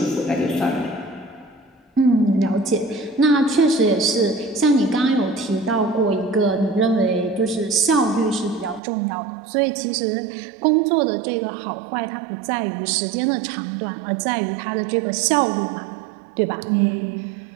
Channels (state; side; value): drops out; left; at 8.8 s